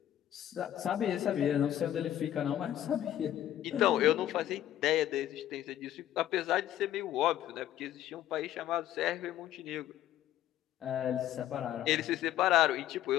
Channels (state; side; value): quieter; right; 12.2 dB